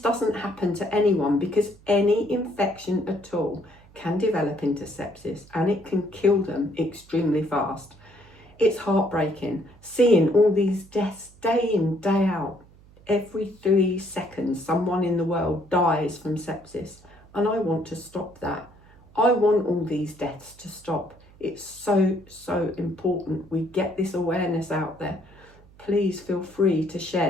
happen to anyone, because any infection at all can develop into sepsis and it can kill them extremely fast. It's heartbreaking seeing all these deaths day in, day out. Every 3 seconds, someone in the world dies from sepsis, and I want to stop that. I want all these deaths to stop. It's so, so important we get this awareness out there. Please feel free to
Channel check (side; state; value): right; noise; hum, 25 dB below the sound